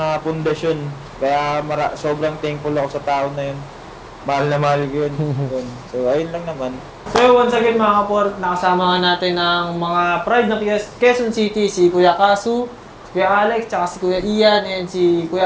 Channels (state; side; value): identical; both; correlation 1.00